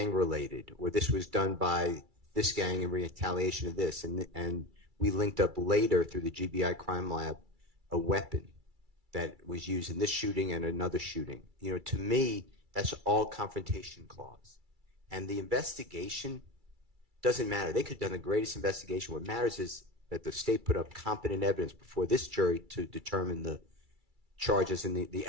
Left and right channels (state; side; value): late; left; 2.3 ms